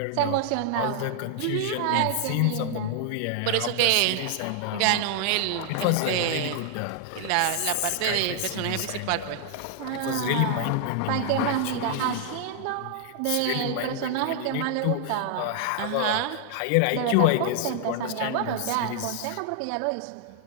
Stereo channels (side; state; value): both; different; correlation 0.00